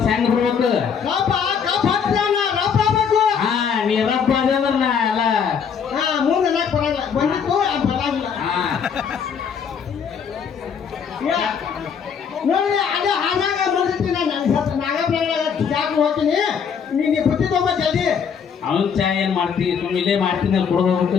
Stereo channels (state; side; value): quieter; right; 7.0 dB